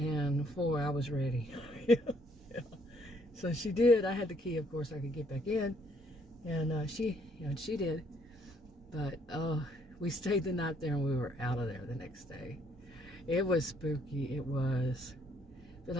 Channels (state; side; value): normal; both; correlation 0.67